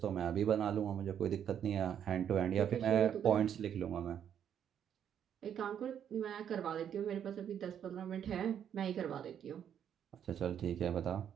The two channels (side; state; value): left; quieter; 9.1 dB